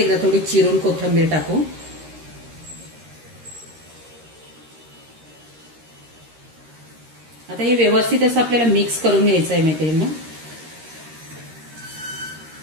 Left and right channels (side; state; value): left; late; 13 ms